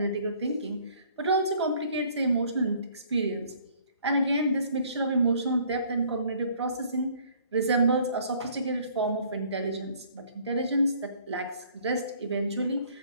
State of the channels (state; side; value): inverted; both; correlation -0.58